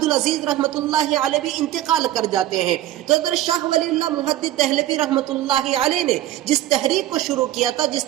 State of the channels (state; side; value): quieter; left; 13.7 dB